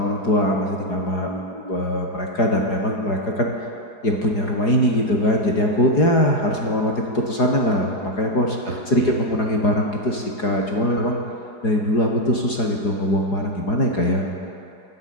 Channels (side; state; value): right; late; 4.8 ms